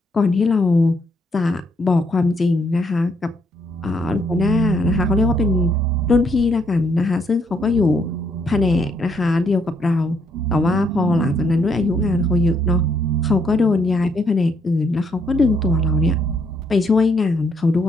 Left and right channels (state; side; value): normal; both; correlation 0.73